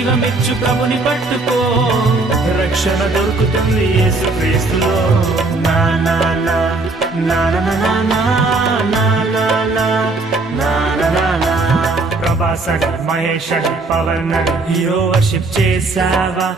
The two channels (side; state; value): left; quieter; 3.4 dB